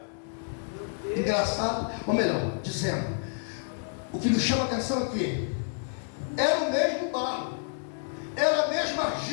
Engraçado, ou melhor, dizendo, o que nos chama a atenção aqui, era o mesmo barro, era a mesma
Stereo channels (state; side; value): silent; right; digital silence